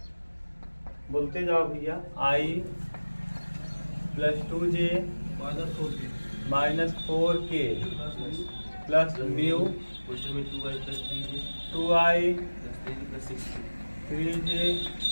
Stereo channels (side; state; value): both; inverted; correlation -1.00